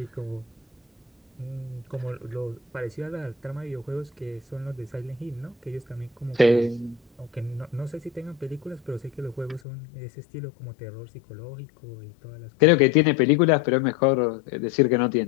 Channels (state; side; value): drops out; right; at 9.6 s